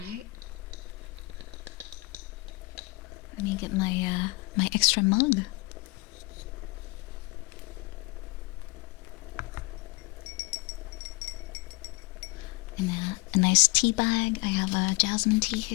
Let me get my extra mug. And a nice tea bag. I have a jasmine tea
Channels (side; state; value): right; quieter; 25.5 dB